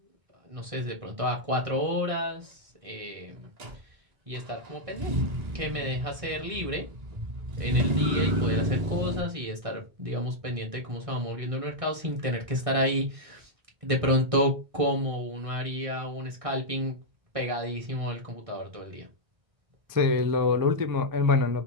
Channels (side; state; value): left; late; 1.6 ms